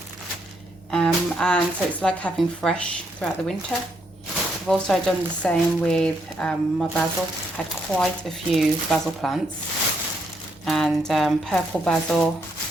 and so it's like having fresh throughout the winter. I've also done the same with my basil. Had quite a few basil plants, and purple basil.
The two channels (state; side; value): normal; both; correlation 0.76